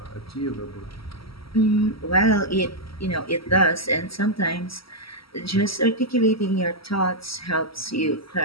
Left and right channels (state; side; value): late; right; 0.75 ms